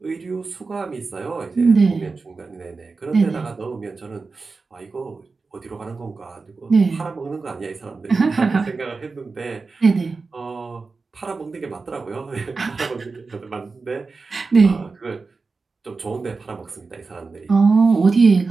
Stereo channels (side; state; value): left; quieter; 4.2 dB